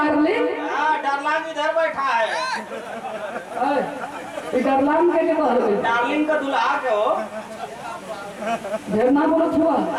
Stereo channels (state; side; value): identical; both; correlation 1.00